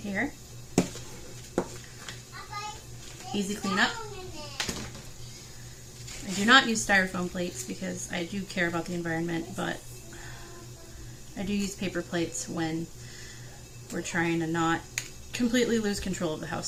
Easy cleanup. I do not use styrofoam plates because I do care about the environment, but I do use paper plates when we're trying to not completely lose control of the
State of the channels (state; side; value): identical; both; correlation 1.00